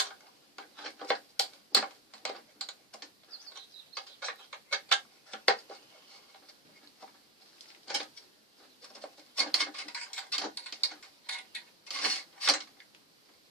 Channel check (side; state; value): both; normal; correlation 0.16